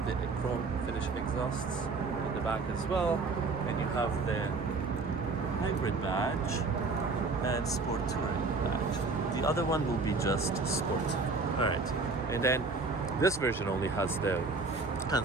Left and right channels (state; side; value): quieter; left; 4.0 dB